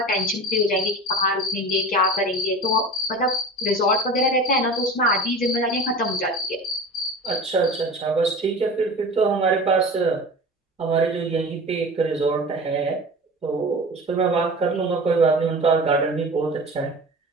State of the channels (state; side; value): normal; both; correlation 0.34